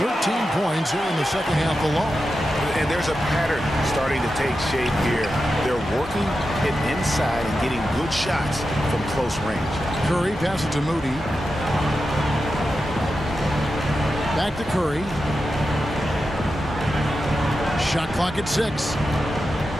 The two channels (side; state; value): both; normal; correlation 0.90